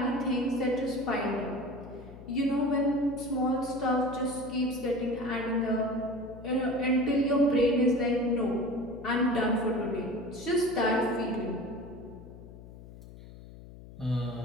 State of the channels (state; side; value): noise; left; hum, 17 dB below the sound